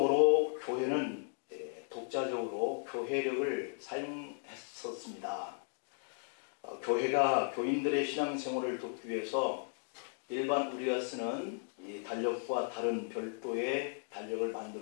교회는 독자적으로 교회력을 사용했었습니다. 교회가 교인들의 신앙생활을 돕기 위해서 일반 우리가 쓰는 이 달력과 다른 별도의 달력을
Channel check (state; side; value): silent; right; 54 dB below the other